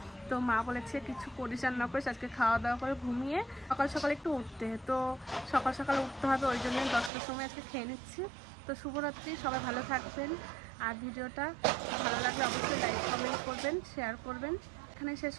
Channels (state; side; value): drops out; left; at 7.1 s